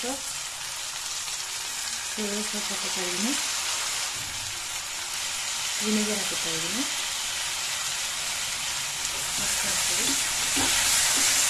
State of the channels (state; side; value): identical; both; correlation 1.00